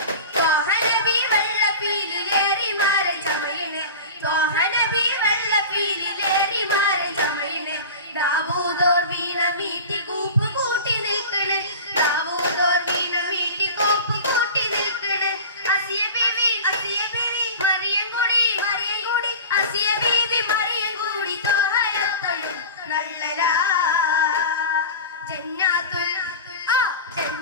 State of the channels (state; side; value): inverted; both; correlation -0.33